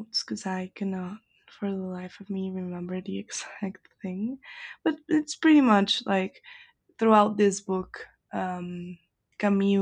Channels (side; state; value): both; identical; correlation 1.00